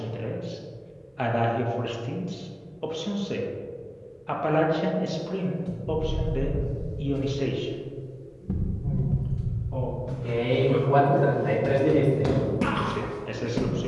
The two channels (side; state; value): both; identical; correlation 1.00